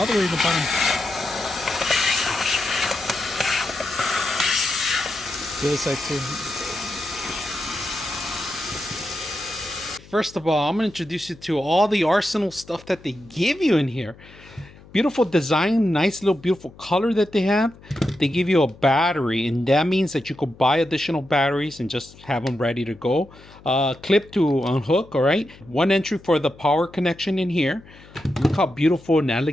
the way to the bottom. The other side too. First of all, I'm going to introduce you to all the arsenal stuff that they give you in here. Beautiful design, nice little beautiful color that they have. They give you a battery, and that means that you could buy additional batteries and just have them ready to go. Clip to unhook, all right? One entry for the power connection in here. Look how beautiful and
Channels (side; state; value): left; noise; hum, 22 dB below the sound